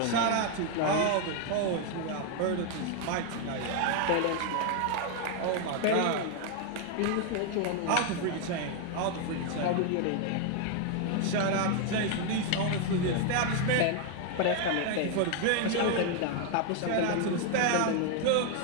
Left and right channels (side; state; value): both; different; correlation 0.00